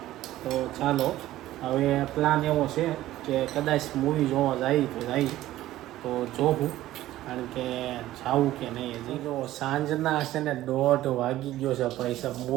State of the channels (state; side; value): quieter; left; 14.9 dB